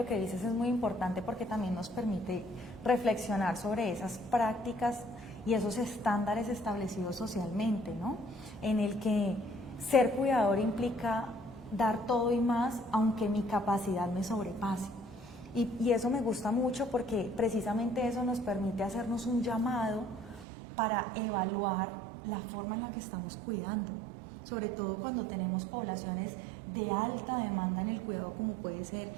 que dices es muy importante porque también nos permite reflexionar sobre esas prácticas y esos estándares establecidos socialmente, ¿no? En el que ser cuidador implica dar todo y más, aunque mi capacidad me sobrepase. Y eso me gusta mucho porque precisamente eso nos permite hacernos un llamado para evaluar la forma en la que estamos cuidando, sobre todo cuando tenemos poblaciones de alta demanda en el cuidado, como puede ser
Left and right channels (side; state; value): left; drops out; at 20.5 s